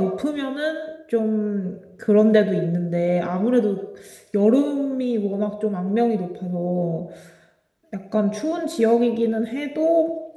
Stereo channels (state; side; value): identical; both; correlation 1.00